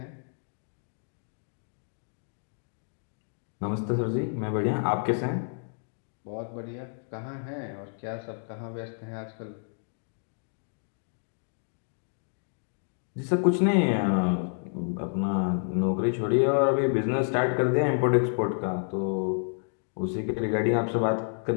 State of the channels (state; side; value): silent; right; digital silence